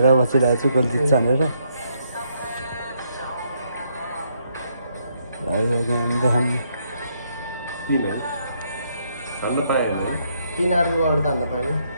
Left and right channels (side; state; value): both; inverted; correlation -0.74